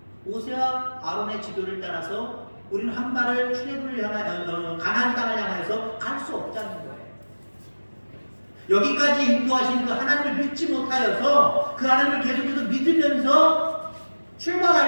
모세와 아론의 지도를 따라서 우리는 한 발을 출애굽을 향하여 가나안 땅을 향해서 갈 수 없다는 거예요. 여기까지 인도하신 그 하나님을 믿지 못하여서 그 하나님을 계속해서 믿으면서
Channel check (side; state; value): both; inverted; correlation -1.00